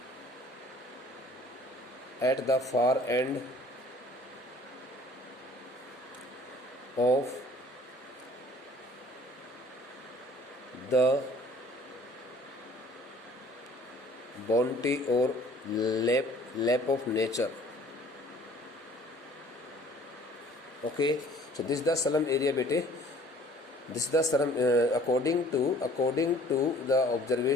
at the far end of the bounty or lap of nature. Okay, so this is the slum area, bete. This is the slum according to the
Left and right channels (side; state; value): both; normal; correlation 0.53